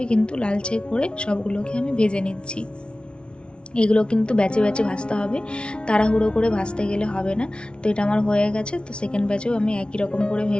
কিন্তু লালচে করে সবগুলোকে আমি ভেজে নিচ্ছি। এগুলো কিন্তু ব্যাচে ব্যাচে ভাজতে হবে, তাড়াহুড়ো করে ভাজতে গেলে হবে না। তো এটা আমার হয়ে গেছে। তো সেকেন্ড ব্যাচেও আমি একই রকম করে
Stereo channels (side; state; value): right; late; 0.057 ms